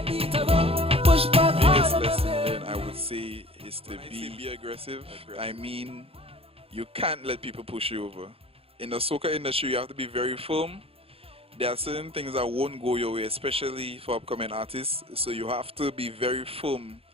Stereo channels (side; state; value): left; late; 0.28 ms